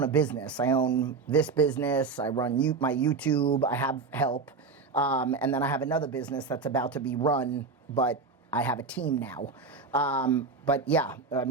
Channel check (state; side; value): quieter; left; 4.6 dB